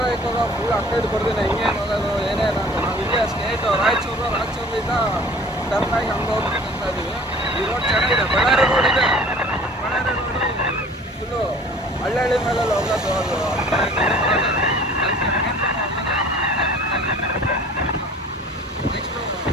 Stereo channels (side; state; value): both; normal; correlation 0.47